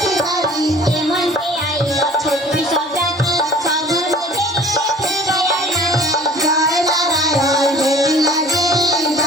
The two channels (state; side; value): normal; both; correlation 0.49